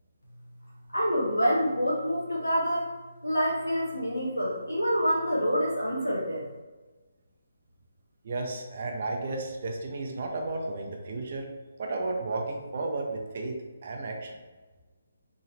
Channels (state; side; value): inverted; both; correlation -0.86